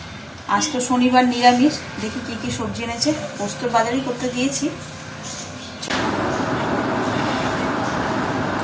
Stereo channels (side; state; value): both; identical; correlation 1.00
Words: আজ তো শনিবার নিরামিষ, দেখি কি কি সবজি এনেছে। পোস্তর বাজারই করতে দিয়েছি।